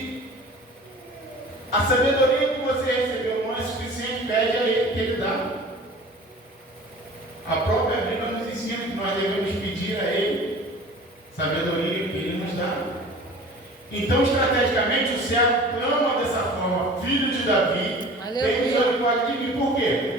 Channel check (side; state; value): both; normal; correlation 0.42